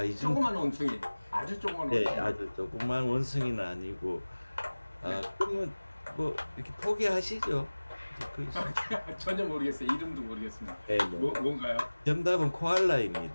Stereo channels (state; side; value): inverted; both; correlation -1.00